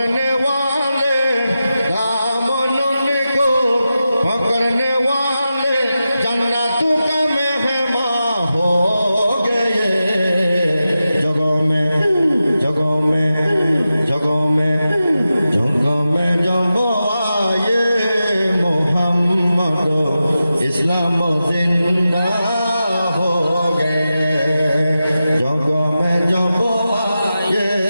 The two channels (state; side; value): inverted; both; correlation -0.92